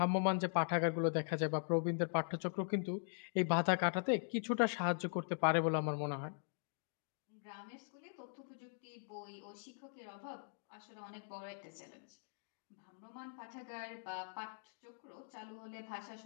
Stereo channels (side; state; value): right; silent; digital silence